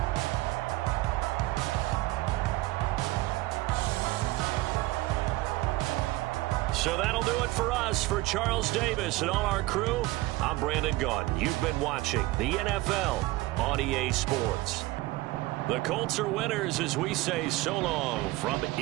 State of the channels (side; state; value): left; quieter; 19.3 dB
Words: So that'll do it for us. For Charles Davis and all our crew, I'm Brandon Gaudin. You've been watching the NFL on EA Sports. The Colts are winners as we say so long from